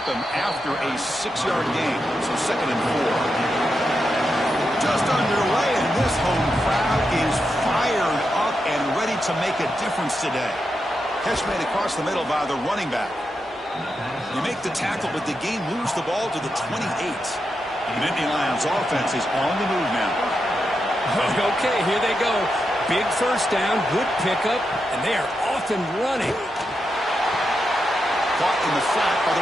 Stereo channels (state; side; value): normal; both; correlation 0.86